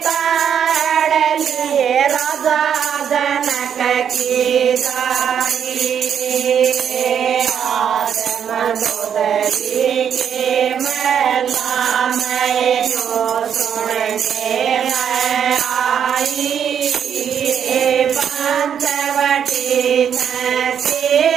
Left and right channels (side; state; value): left; quieter; 8.3 dB